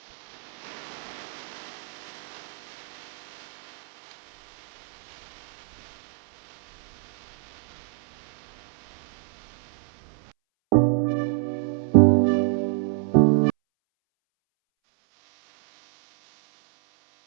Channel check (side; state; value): left; silent; 60 dB below the other